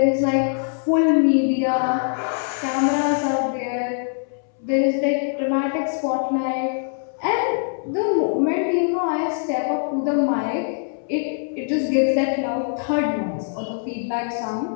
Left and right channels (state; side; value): silent; right; 64 dB below the other